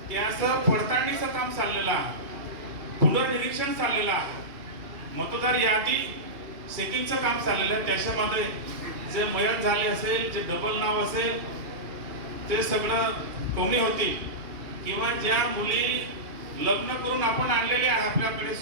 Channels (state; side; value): late; left; 2.8 ms